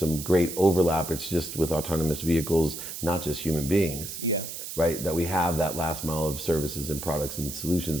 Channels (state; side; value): noise; right; hiss, 8 dB below the sound